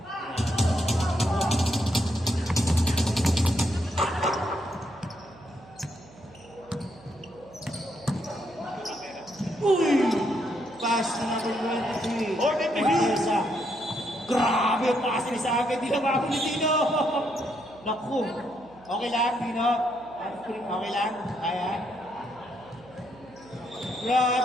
Uy! Pass na number 23. Hornet to shoot! Marquesa. Grabe yung pass ni sa akin. Di na ako ni Dino. Naku. Okay lang, Dino. Okay lang. Ayan.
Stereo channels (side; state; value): right; noise; hum, 23 dB below the sound